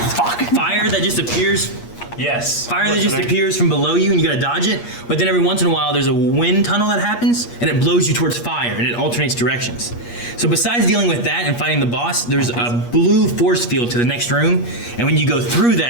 fire that just appears. Yes. Fire that just appears from below you, and you gotta dodge it. But then every once in a while, there's a wind tunnel that happens, and it blows you towards fire, and it alternates directions. So besides dealing with that and fighting the boss, there's a blue force field to the next room, and when you go through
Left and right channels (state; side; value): late; right; 8.4 ms